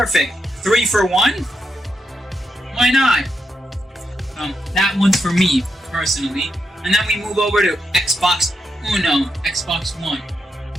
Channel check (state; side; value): normal; both; correlation 0.84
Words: 3 for 1? Why not? That one's for me, personally. And then we move over to Xbox Uno, Xbox One.